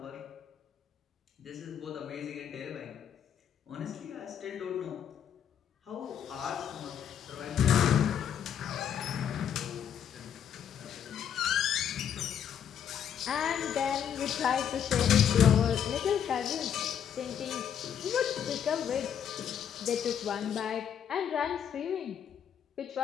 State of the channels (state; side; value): quieter; right; 8.8 dB